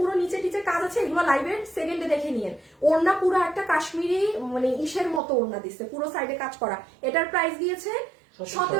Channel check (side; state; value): left; drops out; at 5.2 s